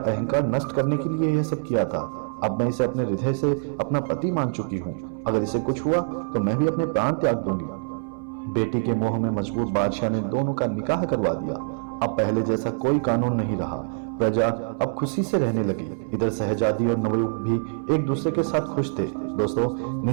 नष्ट करने के लिए यह सब किया था। अब मैं इसे अपने हृदय से अपना पति मान चुकी हूँ। अगर इसे कुछ हुआ तो मैं भी अपने प्राण त्याग दूंगी। बेटी के मोह में मजबूर बादशाह ने दोनों का निकाह करवा दिया। अब पहले जैसा कोई कानून नहीं रहा। प्रजा अब खुशी से रहने लगी। इधर शहजादी और नवयुवक भी एक दूसरे के साथ खुश थे। दोस्तों,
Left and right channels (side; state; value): left; silent; 62 dB below the other